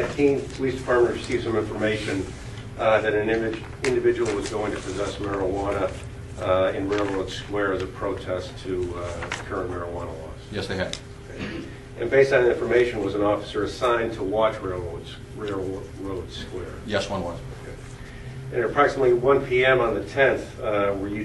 Keene Police Department received some information that an individual was going to possess marijuana in Railroad Square as a protest to current marijuana laws? Yes, they had. Okay. And based on that information, was an officer assigned to watch Railroad Square? Yes, one was. Okay. And at approximately 1 p.m. on the 10th, were you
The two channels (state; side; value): identical; both; correlation 1.00